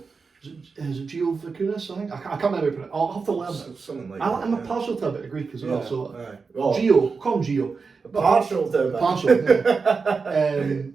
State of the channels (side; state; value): left; quieter; 4.8 dB